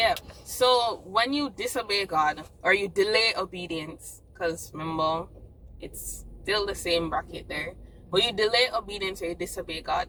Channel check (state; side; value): identical; both; correlation 1.00